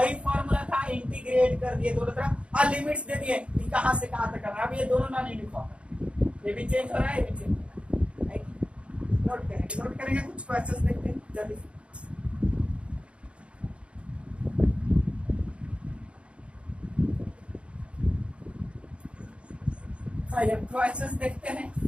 फॉर्मूला था, इंटीग्रेट कर दिए दोनों तरफ और लिमिट्स दे दिए कि कहां से कहां तक करना है। अब ये दोनों नॉन यूनिफॉर्म है, ये भी चेंज हो रहा है, ये भी चेंज हो रहा है। नोट करेंगे, कुछ क्वेश्चंस देखते हैं जल्दी से। क्वेश्चंस देखते हैं।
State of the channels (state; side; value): late; left; 0.059 ms